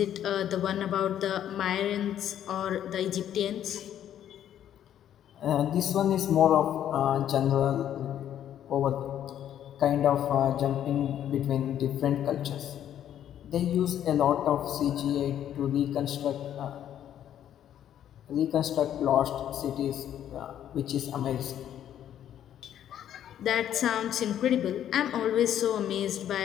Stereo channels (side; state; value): right; quieter; 10.6 dB